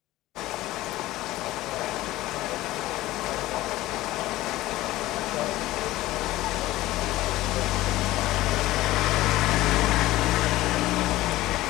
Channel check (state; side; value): quieter; right; 16.9 dB